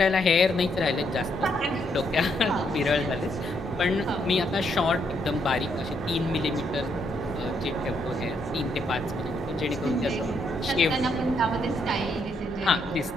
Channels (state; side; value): normal; both; correlation 0.75